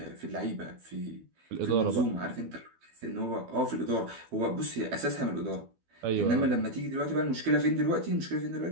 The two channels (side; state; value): left; late; 12 ms